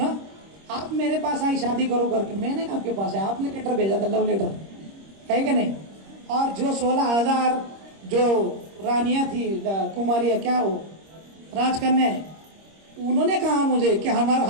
आप मेरे पास आई शादी करो करके। मैंने आपके पास आया, आपने लेटर भेजा था, लव लेटर, है कि नहीं? और जो 16,000 जो रानियां थी, कुमारियां, क्या वो राजकन्या, उन्होंने कहा मुझे कि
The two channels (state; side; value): late; left; 26 ms